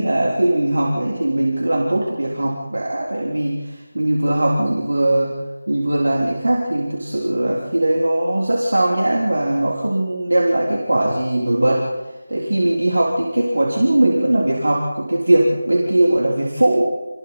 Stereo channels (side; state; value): both; inverted; correlation -0.98